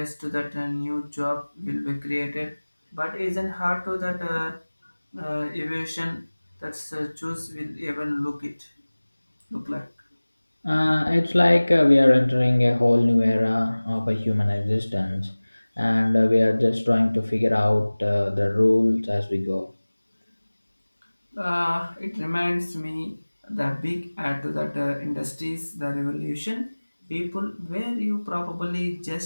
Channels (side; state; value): both; inverted; correlation -1.00